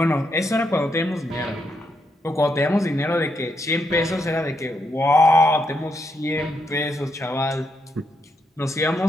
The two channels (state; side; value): normal; both; correlation 0.79